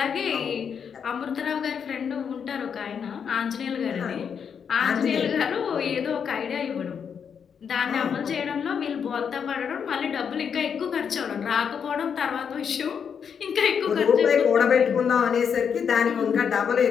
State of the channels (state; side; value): quieter; right; 7.1 dB